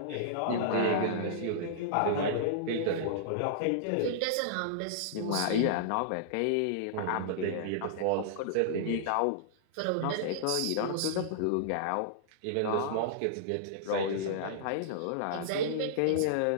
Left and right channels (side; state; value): both; different; correlation -0.02